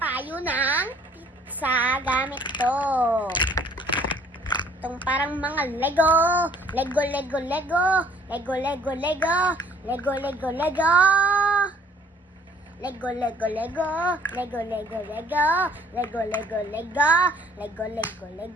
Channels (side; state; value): both; normal; correlation 0.57